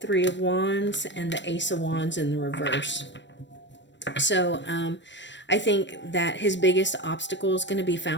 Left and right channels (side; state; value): right; late; 0.53 ms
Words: Three of Wands and the Ace of Wands in the reverse. So I think that his biggest obstacle is going to be